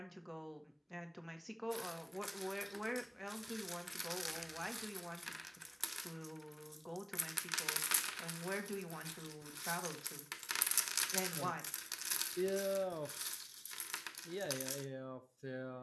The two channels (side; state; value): both; identical; correlation 1.00